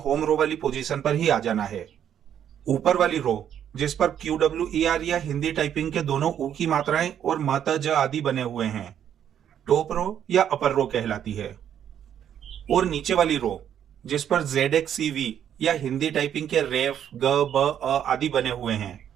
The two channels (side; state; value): left; quieter; 9.5 dB